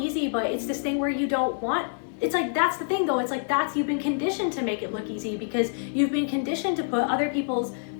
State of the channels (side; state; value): right; silent; 60 dB below the other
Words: but it's this thing where you don't want. It's like, that's the thing though, it's like you've been conditioned to make it look easy because you've been conditioned to put other people's